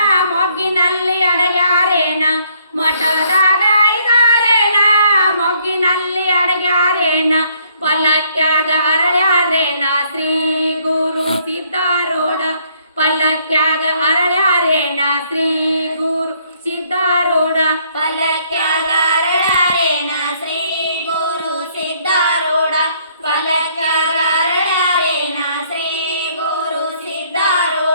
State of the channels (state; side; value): inverted; both; correlation -0.66